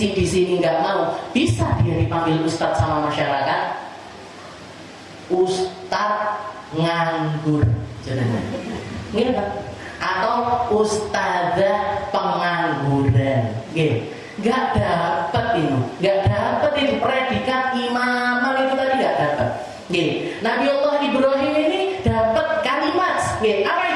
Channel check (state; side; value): identical; both; correlation 1.00